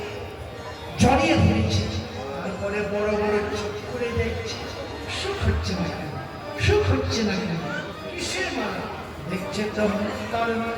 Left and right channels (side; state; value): both; identical; correlation 1.00